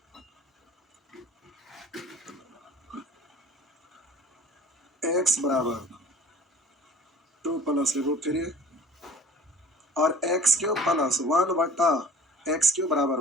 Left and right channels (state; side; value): normal; both; correlation 0.45